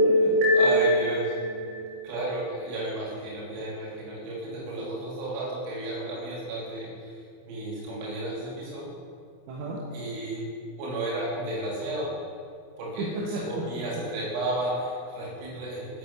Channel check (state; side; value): late; left; 24 ms